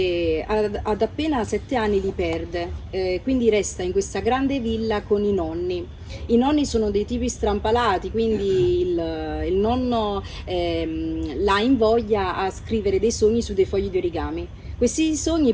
ad appena 7 anni li perde, quindi resta in questa grande villa con i nonni. I nonni sono dei tipi strampalati, quindi il nonno la invoglia a scrivere dei sogni su dei fogli di origami. Questi sogni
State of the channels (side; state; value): both; identical; correlation 1.00